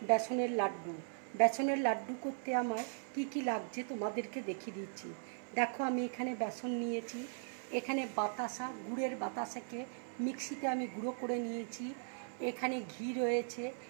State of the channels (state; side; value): silent; left; 52 dB below the other